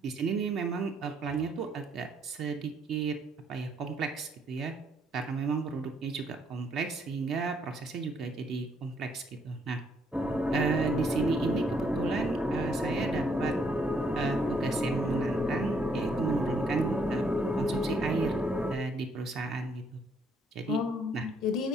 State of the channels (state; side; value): normal; both; correlation 0.70